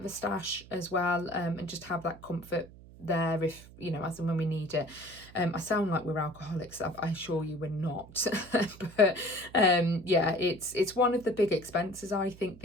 a stash as well, and just have that comfort there, if you know, as and when we need it. I sound like we're alcoholics. I assure you we're not. But yeah, it's one of the big expenses, I think,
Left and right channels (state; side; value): noise; right; hum, 20 dB below the sound